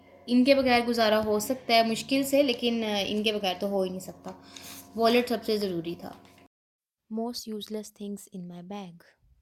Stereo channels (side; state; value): both; identical; correlation 1.00